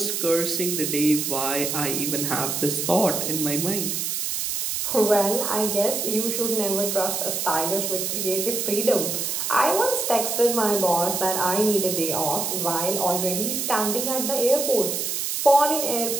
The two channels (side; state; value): right; noise; hiss, 1 dB below the sound